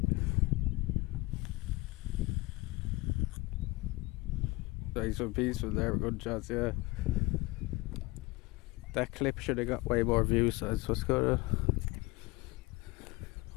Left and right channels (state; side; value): quieter; right; 22.4 dB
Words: Nice and peaceful there, good shots, yeah. That clip should have got way more views, so that's what's good.